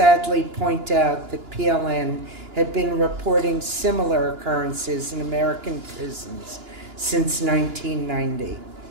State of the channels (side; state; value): left; late; 2.9 ms